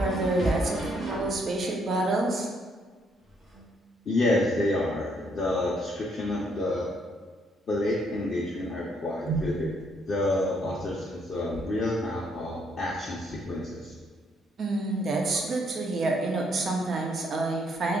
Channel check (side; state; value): both; normal; correlation 0.71